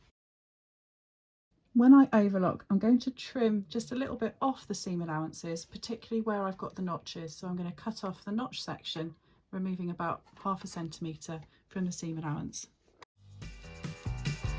When I overlock, I'm going to trim just a little bit off the seam allowances, particularly where I've got the notches. So I'm going to cut off the notch section, removing about 0.5 centimetre from the seam allowance.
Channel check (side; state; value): both; identical; correlation 1.00